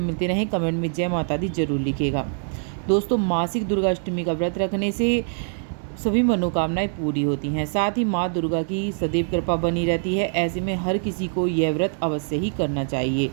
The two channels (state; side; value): silent; left; 63 dB below the other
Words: मिलते रहे कमेंट में जय माता दी जरूर लिखिएगा। दोस्तों, मासिक दुर्गा अष्टमी का व्रत रखने से सभी मनोकामनाएं पूरी होती हैं, साथ ही माँ दुर्गा की सदैव कृपा बनी रहती है। ऐसे में हर किसी को यह व्रत अवश्य ही करना चाहिए।